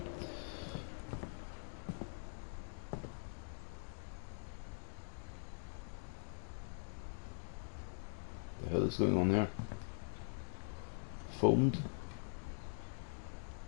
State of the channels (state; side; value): silent; right; digital silence